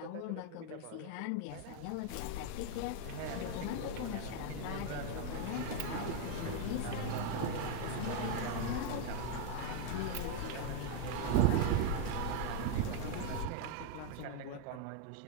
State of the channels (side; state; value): both; different; correlation 0.00